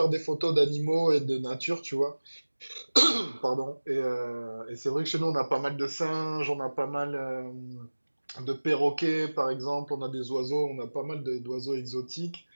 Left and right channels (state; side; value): inverted; both; correlation -1.00